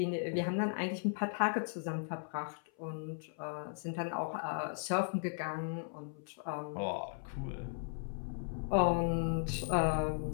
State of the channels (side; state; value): right; silent; 53 dB below the other